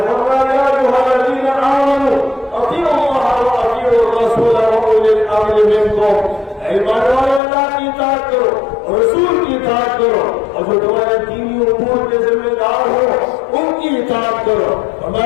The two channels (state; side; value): drops out; right; at 7.4 s